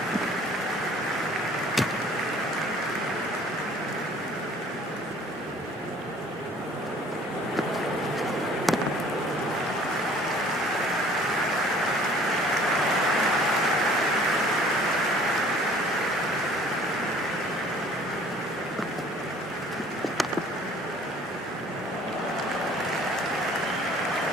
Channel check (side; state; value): both; normal; correlation 0.53